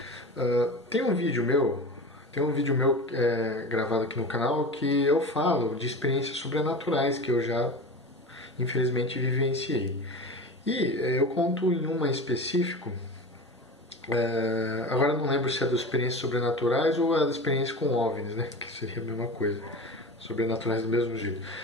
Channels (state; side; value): normal; both; correlation 0.30